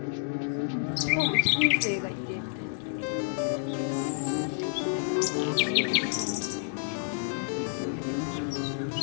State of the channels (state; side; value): silent; right; digital silence